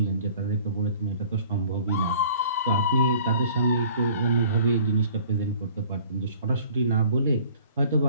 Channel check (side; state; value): both; inverted; correlation -0.52